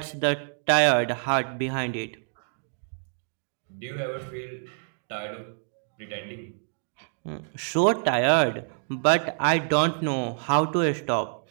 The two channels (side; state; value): left; silent; digital silence